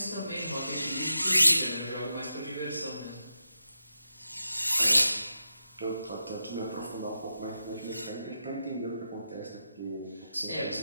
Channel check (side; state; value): both; inverted; correlation -0.88